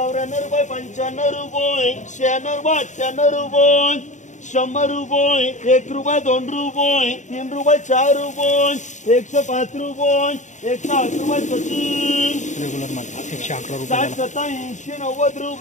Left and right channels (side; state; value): right; late; 0.35 ms